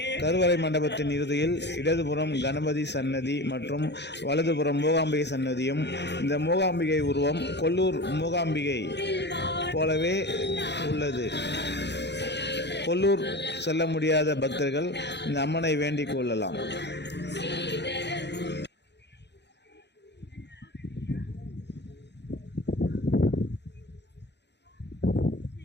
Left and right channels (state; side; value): late; right; 0.50 ms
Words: கருவறை மண்டபத்தின் இறுதியில் இடதுபுறம் கணபதி சன்னதி மற்றும் வலதுபுறம் மூகாம்பிகை சன்னதியும், இந்த மூகாம்பிகை உருவம் கொல்லூர் மூகாம்பிகை போலவே உள்ளது. கொல்லூர் செல்ல முடியாத பக்தர்கள் இந்த அம்மனை வேண்டிக் கொள்ளலாம்.